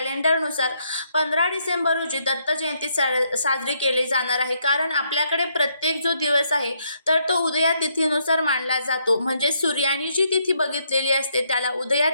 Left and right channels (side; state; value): both; inverted; correlation -0.74